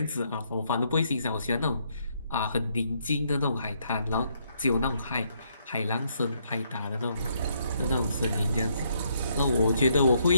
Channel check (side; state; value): both; inverted; correlation -0.73